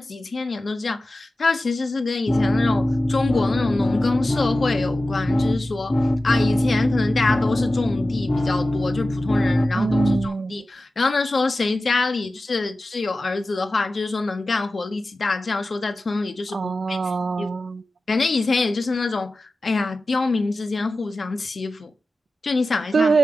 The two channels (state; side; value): normal; both; correlation 0.94